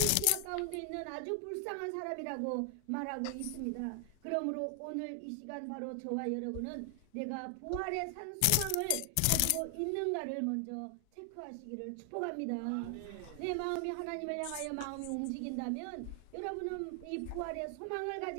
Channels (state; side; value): different; both; correlation 0.00